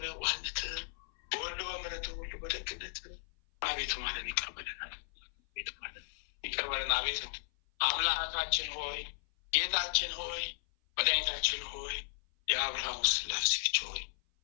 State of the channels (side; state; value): right; silent; 54 dB below the other